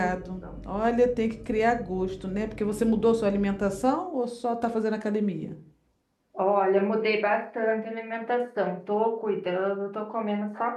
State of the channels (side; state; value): both; identical; correlation 1.00